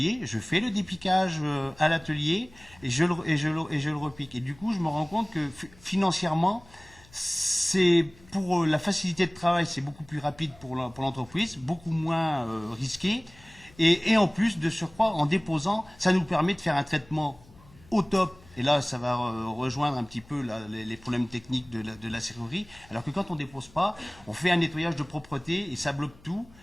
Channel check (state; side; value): noise; left; hum, 25 dB below the sound